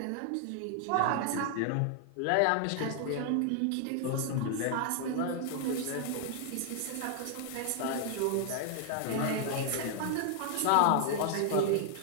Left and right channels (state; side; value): different; both; correlation 0.00